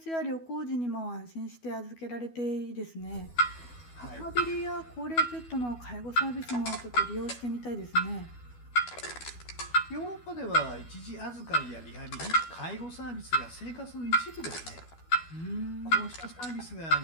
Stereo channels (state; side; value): late; right; 12 ms